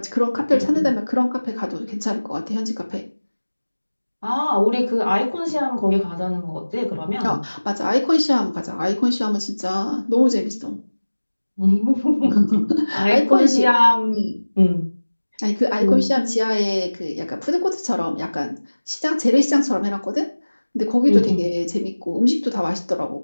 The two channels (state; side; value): inverted; both; correlation -1.00